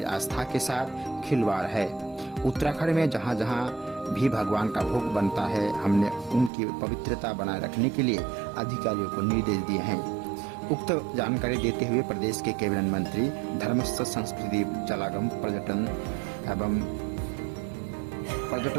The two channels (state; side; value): drops out; left; at 6.5 s